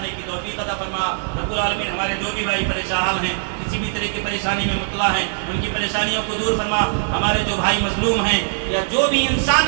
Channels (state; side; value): silent; left; digital silence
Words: کی توفیق عطا فرما۔ رب العالمین ہمارے جو بھی بھائی پریشان ہیں، کسی بھی طرح کی پریشانی میں مبتلا ہیں، ان کی پریشانیوں کو دور فرما۔ ہمارے جو بھائی مظلوم ہیں یا جو بھی